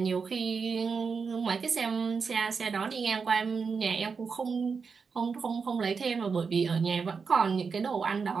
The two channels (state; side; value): quieter; left; 5.4 dB